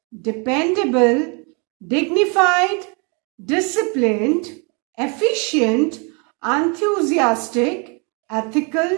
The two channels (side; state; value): left; quieter; 34.0 dB